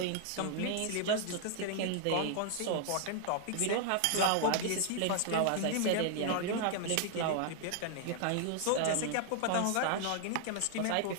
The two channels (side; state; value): both; different; correlation 0.00